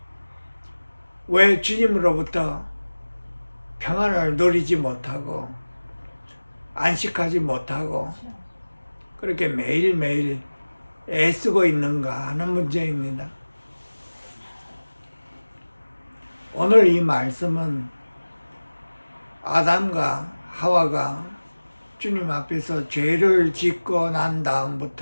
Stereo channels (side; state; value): both; inverted; correlation -1.00